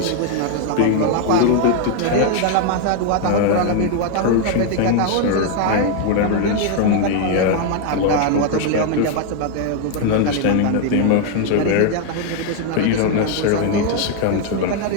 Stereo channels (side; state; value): both; different; correlation 0.01